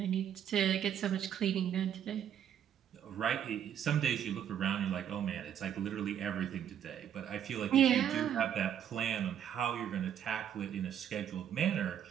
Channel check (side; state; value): left; quieter; 9.5 dB